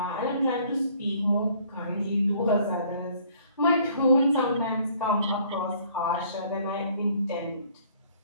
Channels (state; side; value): inverted; both; correlation -0.58